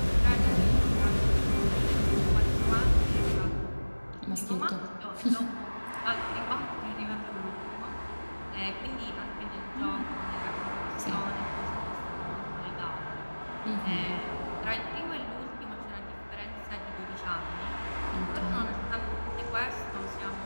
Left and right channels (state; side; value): inverted; both; correlation -1.00